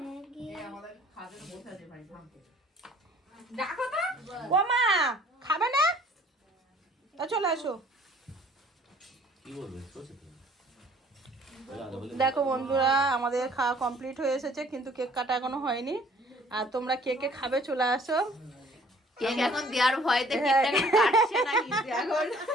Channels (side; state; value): both; normal; correlation 0.56